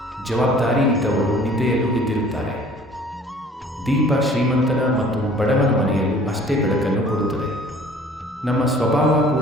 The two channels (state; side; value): normal; both; correlation 0.51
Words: ಜವಾಬ್ದಾರಿ ಇದ್ದವರು ನಿದ್ದೆಯಲ್ಲೂ ಎದ್ದಿರುತ್ತಾರೆ. ದೀಪ ಶ್ರೀಮಂತನ ಮತ್ತು ಬಡವನ ಮನೆಯಲ್ಲೂ ಅಷ್ಟೇ ಬೆಳಕನ್ನು ಕೊಡುತ್ತದೆ. ನಮ್ಮ ಸ್ವಭಾವ